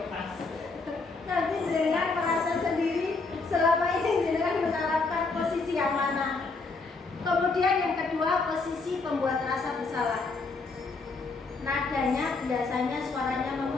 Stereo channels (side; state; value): right; quieter; 3.9 dB